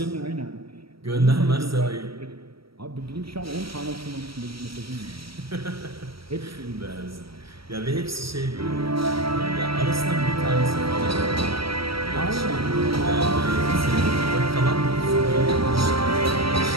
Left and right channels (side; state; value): left; late; 0.75 ms